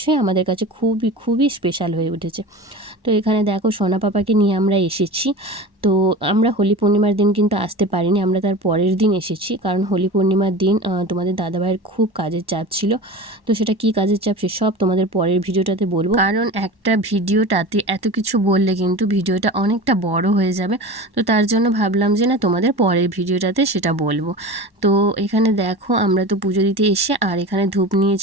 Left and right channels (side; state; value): left; late; 1.1 ms